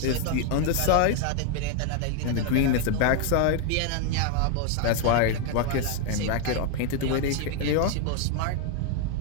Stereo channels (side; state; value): both; different; correlation 0.01